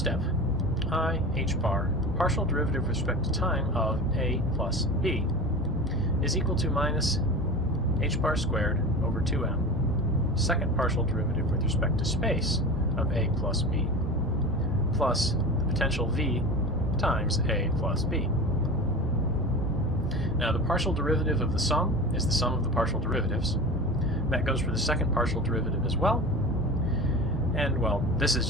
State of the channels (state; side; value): normal; both; correlation 0.31